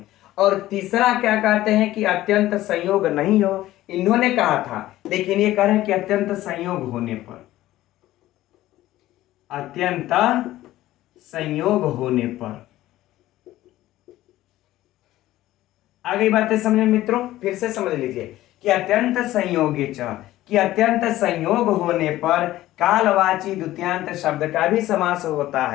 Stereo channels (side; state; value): right; quieter; 15.3 dB